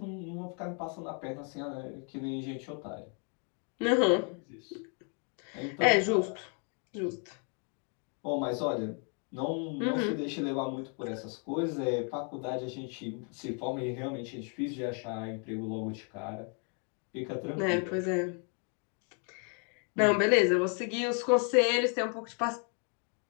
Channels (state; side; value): quieter; right; 39.5 dB